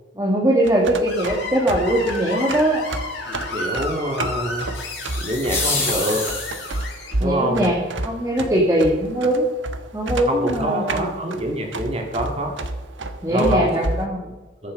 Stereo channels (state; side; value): normal; both; correlation 0.49